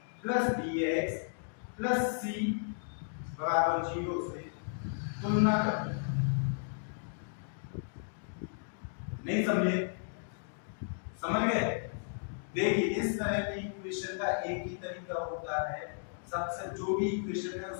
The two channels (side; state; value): right; silent; digital silence